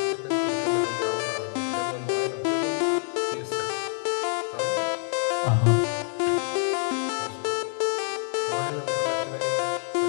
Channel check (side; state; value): right; silent; 61 dB below the other